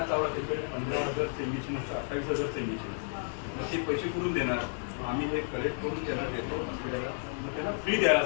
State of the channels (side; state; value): right; silent; 57 dB below the other